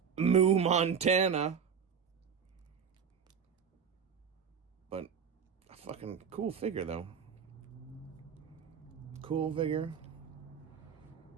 Moo Montana. But a fucking cool figure, though. Cool figure.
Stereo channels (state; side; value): quieter; left; 7.0 dB